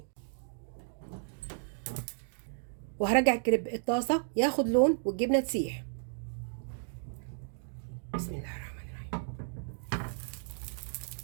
وهرجع الكريب الطاسه ياخد لون والجبنه تسيح. بسم الله الرحمن الرحيم.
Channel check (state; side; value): silent; left; digital silence